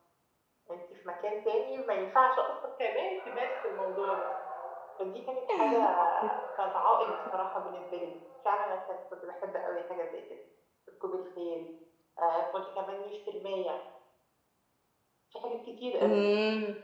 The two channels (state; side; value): identical; both; correlation 1.00